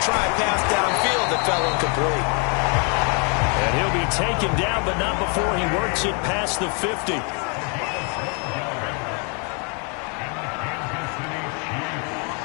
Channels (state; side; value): quieter; right; 36.7 dB